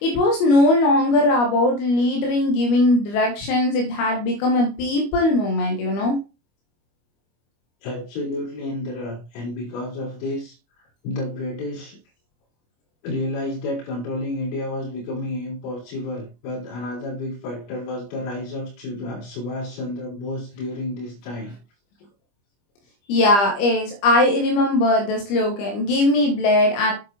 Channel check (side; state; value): right; late; 25 ms